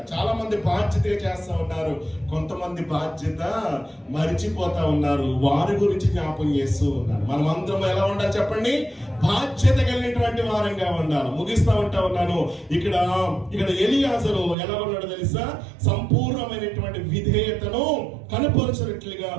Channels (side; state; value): left; drops out; at 14.6 s